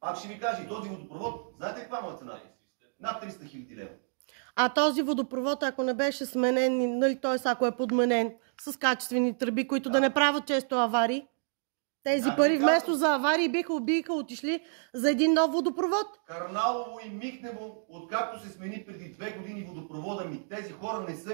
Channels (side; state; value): left; silent; digital silence